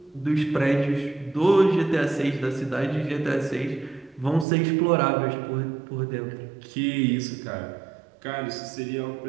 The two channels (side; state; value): left; drops out; at 4.5 s